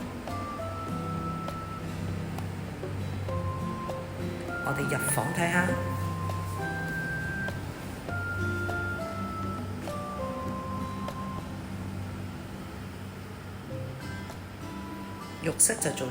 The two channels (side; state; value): both; identical; correlation 1.00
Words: 我哋入房睇下。浴室就做